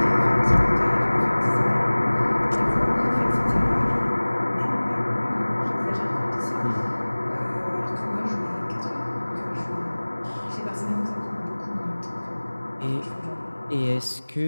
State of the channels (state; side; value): inverted; both; correlation -1.00